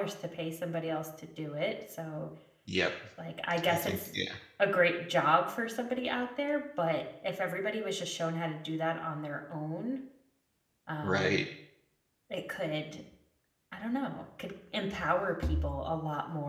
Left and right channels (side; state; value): both; identical; correlation 1.00